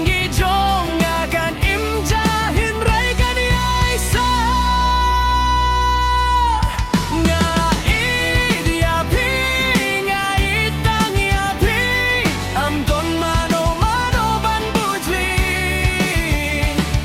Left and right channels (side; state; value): both; identical; correlation 1.00